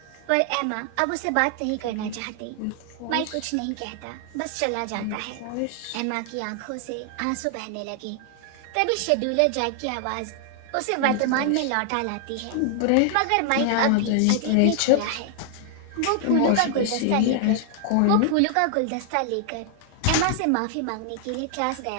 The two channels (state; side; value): different; both; correlation 0.00